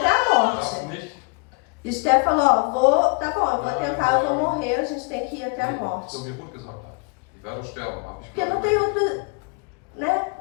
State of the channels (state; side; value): quieter; right; 32.5 dB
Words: a morte. E Esther falou, tá bom, eu vou tentar, eu vou morrer, a gente tem que ir até a morte. Porque não tem